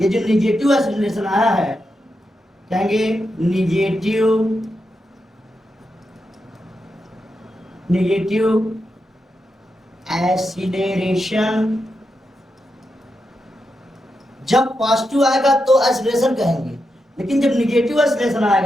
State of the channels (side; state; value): both; normal; correlation 0.86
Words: जो निगेटिव एक्सीलरेशन आया है, कहेंगे निगेटिव एक्सीलरेशन। जब पॉजिटिव आएगा तो एक्सीलरेशन कहेंगे, लेकिन जब निगेटिव एक्सीलरेशन